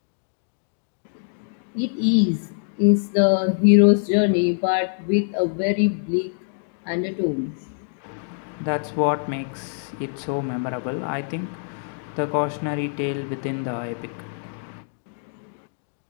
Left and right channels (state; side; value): silent; right; digital silence